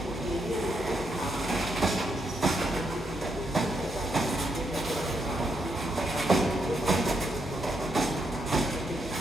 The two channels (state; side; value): normal; both; correlation 0.79